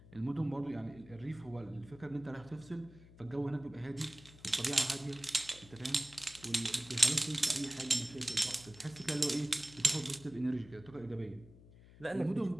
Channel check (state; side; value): noise; left; hum, 21 dB below the sound